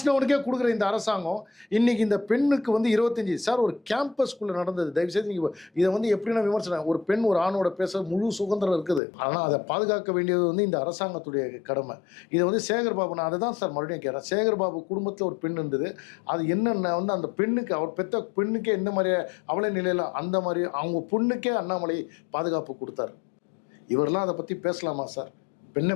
கொடுக்குற இந்த அரசாங்கம் இன்னைக்கு இந்த பெண்ணுக்கு வந்து 25 சார் ஒரு கேம்பஸ்குள்ளே நடந்தது. தயவுசெய்து நீங்கள் இதை வந்து எப்படின்னா விமர்சனம், ஒரு பெண் ஒரு ஆணோட பேச முழு சுதந்திரம் இருக்குது. ஆனால் அதை பாதுகாக்க வேண்டியது வந்து இந்த அரசாங்கத்துடைய கடமை. இதை வந்து சேகர்பாபு, நான் அதை தான் சார் மறுபடியும் கேட்குறேன். சேகர்பாபு குடும்பத்தில் ஒரு பெண் இருந்தது. அது என்னென்ன வந்து அந்த பெண்ணுக்கு, அவர் பெற்ற பெண்ணுக்கே எந்த மாதிரி அவளை நிலையில் அந்த மாதிரி அவங்க பொண்ணுக்கே அண்ணாமலை பாதுகாப்பு கொடுத்தாரு. இவரெல்லாம் அதை பற்றி பேசலாமா சார்?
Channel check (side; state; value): right; drops out; at 9.0 s